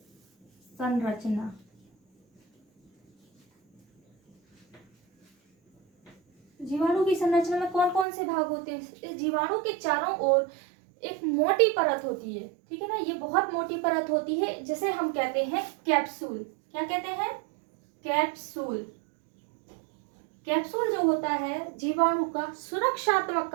संरचना। जीवाणु की संरचना में कौन कौन से भाग होते हैं? इस जीवाणु के चारों ओर एक मोटी परत होती है, ठीक है ना। ये बहुत मोटी परत होती है जिसे हम कहते हैं कैप्सूल। क्या कहते हैं? कैप्सूल। कैप्सूल जो होता है जीवाणु का सुरक्षात्मक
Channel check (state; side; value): drops out; left; at 8.1 s